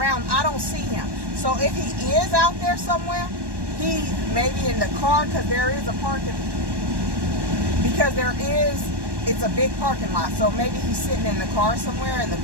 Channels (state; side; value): late; left; 1.1 ms